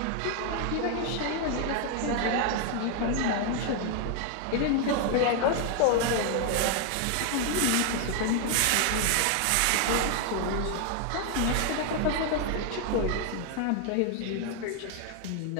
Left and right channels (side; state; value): both; different; correlation 0.00